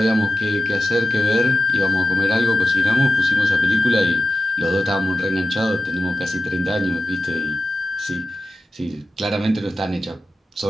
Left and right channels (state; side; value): normal; both; correlation 0.93